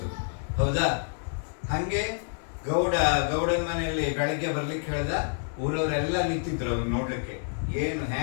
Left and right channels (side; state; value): right; silent; digital silence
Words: ಹೌದಾ? ಹಂಗೆ ಗೌಡನ ಮನೆಯಲ್ಲಿ ಬೆಳಗ್ಗೆ ಬರ್ಲಿಕ್ಕೆ ಹೇಳ್ದ. ಊರವರೆಲ್ಲ ನಿಂತಿದ್ರು ಅವ್ನು ನೋಡ್ಲಿಕ್ಕೆ, ಏನು